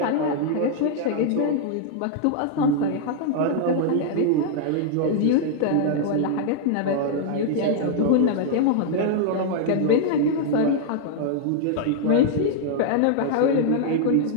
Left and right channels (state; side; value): different; both; correlation -0.01